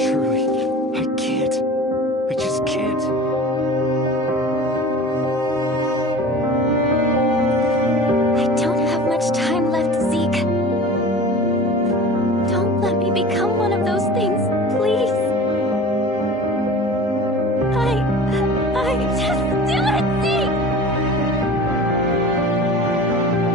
I can't. I just can't. I don't have much time left, Zeke. Don't let me become one of those things, please. Just do it, Zeke!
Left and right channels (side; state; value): both; normal; correlation 0.39